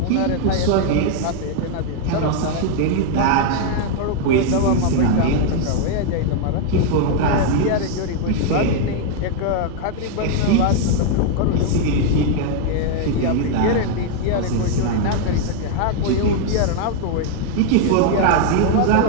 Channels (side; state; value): both; different; correlation 0.00